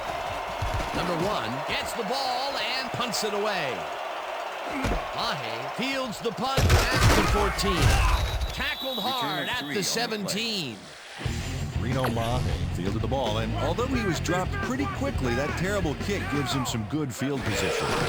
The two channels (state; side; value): identical; both; correlation 1.00